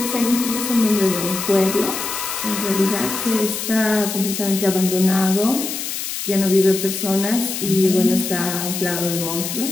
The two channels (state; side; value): noise; left; hiss, 5 dB below the sound